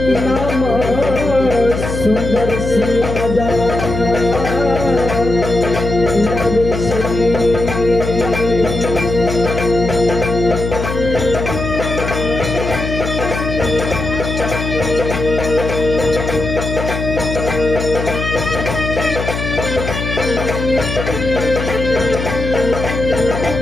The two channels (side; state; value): left; noise; hum, 4 dB below the sound